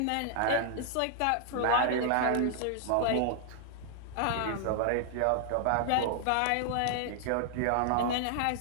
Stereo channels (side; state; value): both; different; correlation -0.01